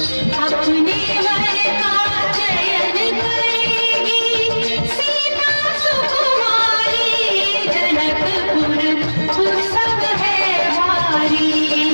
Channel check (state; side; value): inverted; both; correlation -1.00